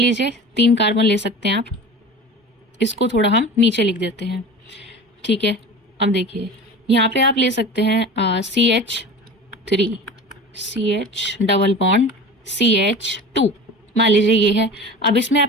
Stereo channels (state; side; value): normal; both; correlation 0.35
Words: 3 कार्बन ले सकते हैं आप, इसको थोड़ा हम नीचे लिख देते हैं, ठीक है। अब देखिए यहाँ पे आप ले सकते हैं CH3 CH double bond CH2, मान लीजिए ये है। अब इसमें